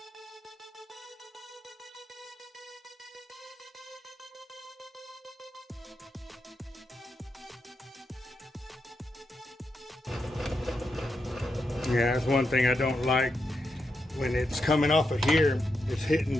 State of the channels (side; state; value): both; normal; correlation 0.85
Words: Yeah, that's one thing I don't like. When it's coming off of here, it's hitting